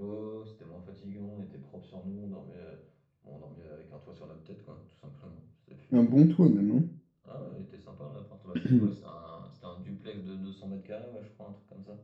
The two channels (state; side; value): identical; both; correlation 1.00